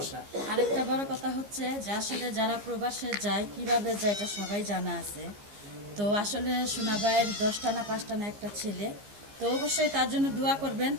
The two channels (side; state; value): left; late; 15 ms